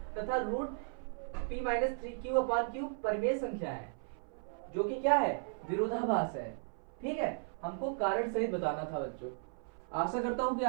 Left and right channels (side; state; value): left; silent; 54 dB below the other